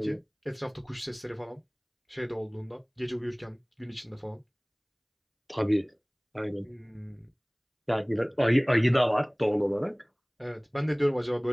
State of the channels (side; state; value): both; identical; correlation 1.00